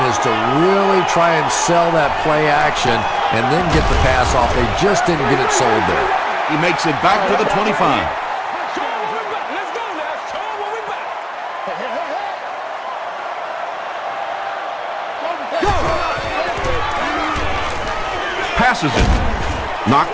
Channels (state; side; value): identical; both; correlation 1.00